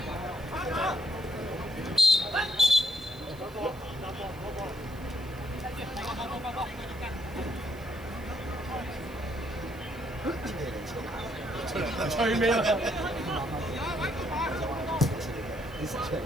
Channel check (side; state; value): right; noise; hiss, 23 dB below the sound